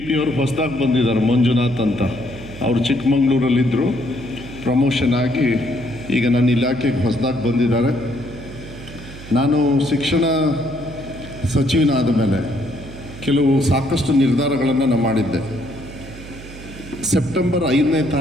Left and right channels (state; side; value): noise; right; hum, 15 dB below the sound